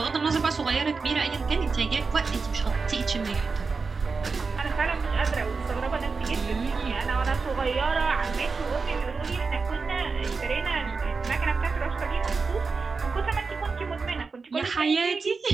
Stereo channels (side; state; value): left; quieter; 4.6 dB